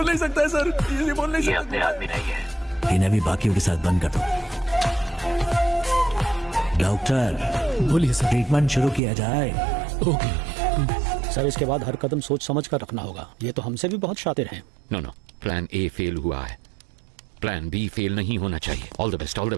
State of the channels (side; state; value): left; drops out; at 9.0 s